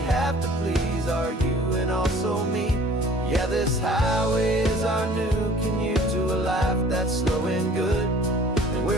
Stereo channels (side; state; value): both; normal; correlation 0.51